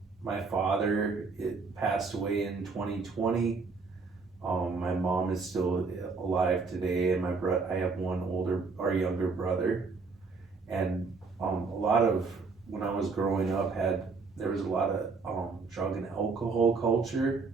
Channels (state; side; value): quieter; left; 4.4 dB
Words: My father passed away in 2020. My mom is still alive today, and I have one younger brother, and a lot of when I was growing up there was a lot of drug and alcohol culture